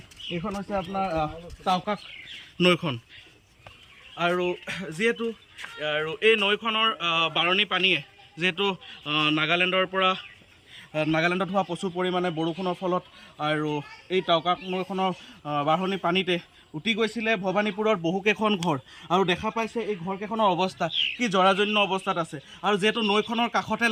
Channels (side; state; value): both; identical; correlation 1.00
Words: এইখন হৈছে আপোনাৰ টাউকাক নৈখন আৰু যিহেতু আৰু এই নৈখনৰ বাৰণী পানীয়ে যিহেতু নাগালেণ্ডত হোৱা প্ৰচুৰ পৰিমাণে বৰষুণৰ ফলত আৰু এই টাউকাক নৈখনৰ বাঢ়নী পানীতে উটি গৈছিলে ভৱানীপুৰৰ বহুকেইখন ঘৰ। আৰু দেখা পাইছে এই ঘৰকেইখনৰ অৱস্থা কি জৰাজীৰ্ণ অৱস্থাত আছে। আৰু যিহেতু নৈখনৰ কাষতে